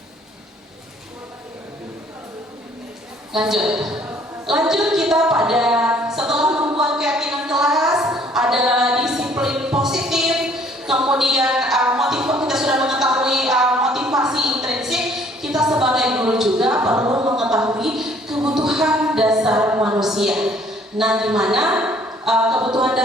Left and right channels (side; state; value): both; normal; correlation 0.59